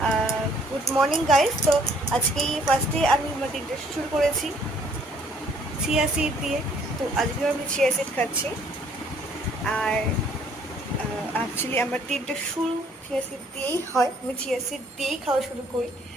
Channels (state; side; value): normal; both; correlation 0.62